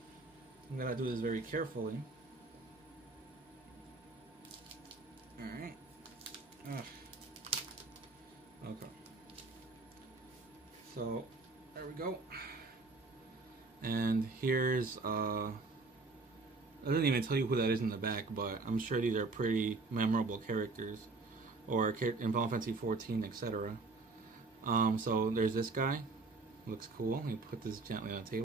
I'm gonna do this very carefully. So there we go. And here's I didn't even tell you who that is in the back, but I'm sure these are pretty memorable characters, or in Final Fantasy 14, etc. So there's this guy. Looks cool. Let me put this gently on the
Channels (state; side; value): quieter; left; 3.7 dB